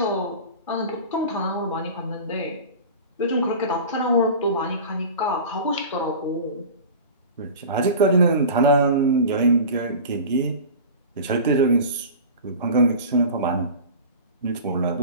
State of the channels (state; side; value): inverted; both; correlation -0.35